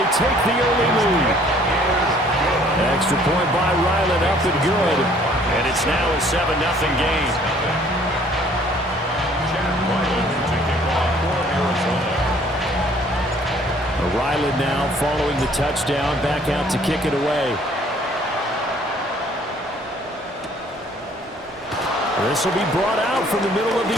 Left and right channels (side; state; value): both; normal; correlation 0.58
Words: take the early lead. Extra point by Ryland, up and good. And it's now a 7-0 game. Ryland now following the touchdown, back out to kick it away. This will be brought out from the middle of the